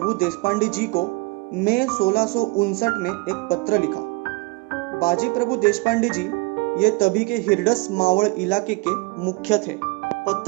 देशपांडे जी को मई 1659 में एक पत्र लिखा। बाजी प्रभु देशपांडे जी ये तभी के हिरडस मावड़ इलाके के मुख्य थे।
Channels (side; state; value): left; quieter; 24.7 dB